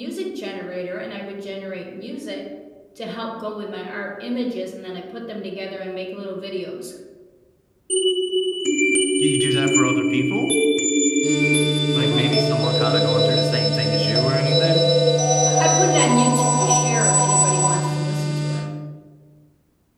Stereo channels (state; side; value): identical; both; correlation 1.00